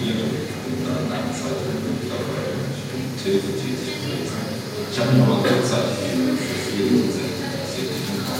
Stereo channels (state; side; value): identical; both; correlation 1.00